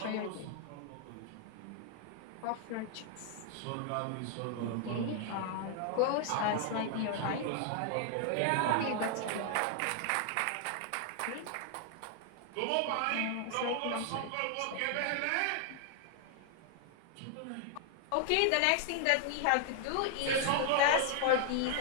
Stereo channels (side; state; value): both; different; correlation 0.00